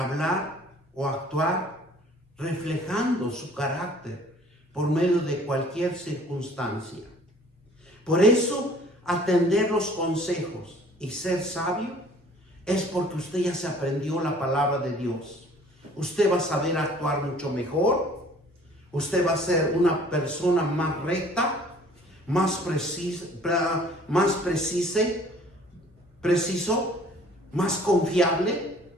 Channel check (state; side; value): normal; both; correlation 0.53